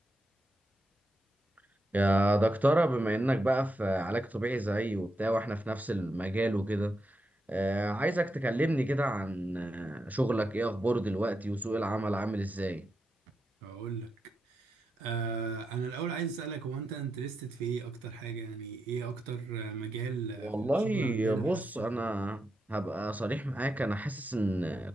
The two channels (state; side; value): normal; both; correlation 0.86